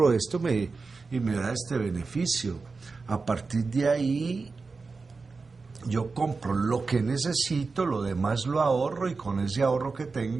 esto y me da este beneficio. A partir de ahí yo compro lo que necesito, lo demás lo ahorro, y con ese ahorro que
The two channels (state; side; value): quieter; left; 4.3 dB